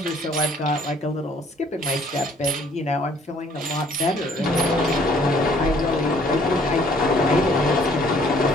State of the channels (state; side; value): normal; both; correlation 0.59